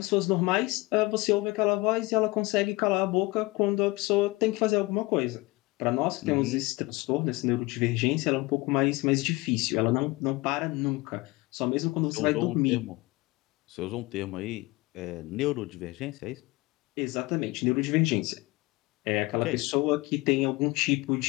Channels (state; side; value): quieter; right; 22.6 dB